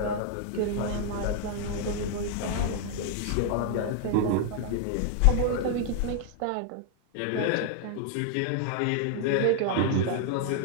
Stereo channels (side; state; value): both; different; correlation 0.00